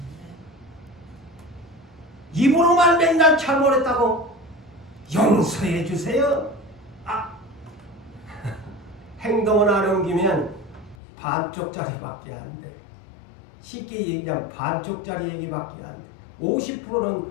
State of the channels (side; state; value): right; drops out; at 11.0 s